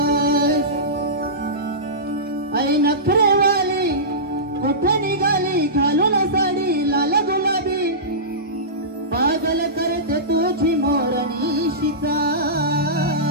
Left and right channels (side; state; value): both; normal; correlation -0.19